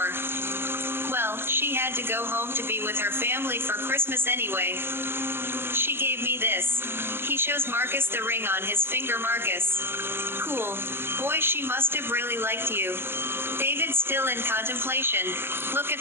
Well, she had to go home to be with her family for Christmas anyway. She gave me this. He shows Marcus the ring on his finger. Marcus. Cool. Boy, she must have really liked you. David still in contemplation. Look at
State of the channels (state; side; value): late; left; 0.11 ms